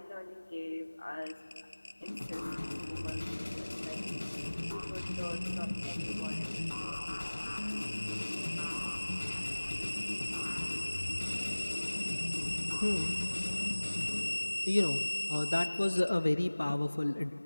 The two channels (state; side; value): inverted; both; correlation -1.00